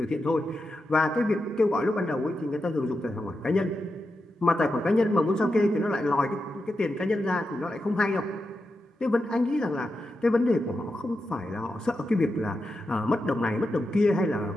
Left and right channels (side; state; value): both; normal; correlation 0.88